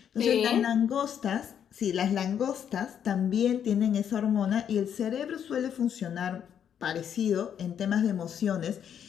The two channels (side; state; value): right; quieter; 8.8 dB